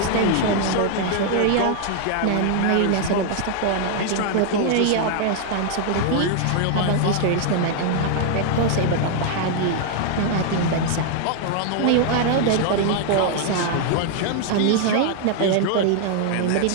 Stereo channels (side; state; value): both; different; correlation 0.00